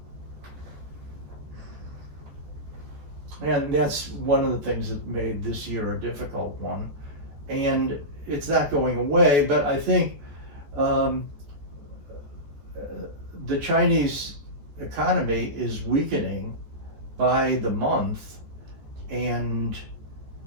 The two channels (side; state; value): left; late; 14 ms